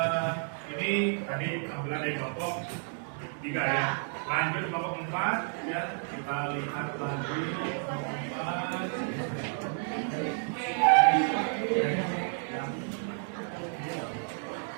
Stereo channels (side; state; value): left; silent; 57 dB below the other